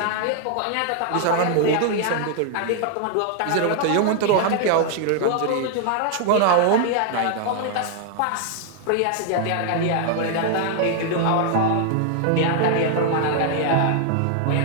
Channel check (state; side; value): different; both; correlation 0.00